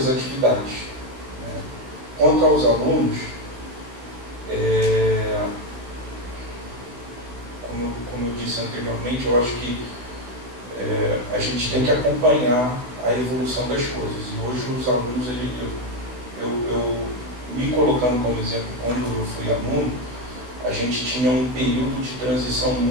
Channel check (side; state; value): left; late; 16 ms